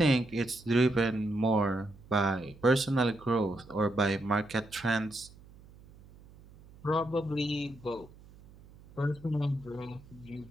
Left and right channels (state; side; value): noise; right; hum, 22 dB below the sound